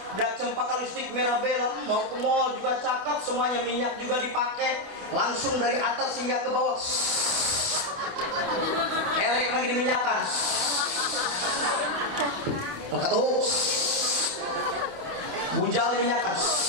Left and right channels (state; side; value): late; left; 28 ms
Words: udah cempaka listrik merah bela, mau ke mall juga cakep, semuanya minyak juga dipakai, langsung dari atas hingga ke bawah. Erik lagi diminyakan. Angkat tuh. Bujal diminyakan.